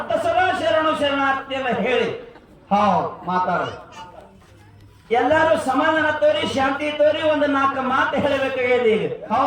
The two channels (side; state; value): both; identical; correlation 1.00